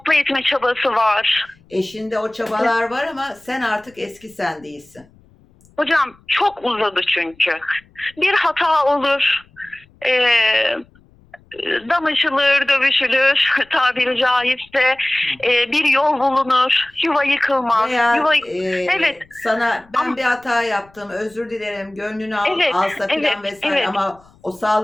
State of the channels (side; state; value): left; noise; rumble, 29 dB below the sound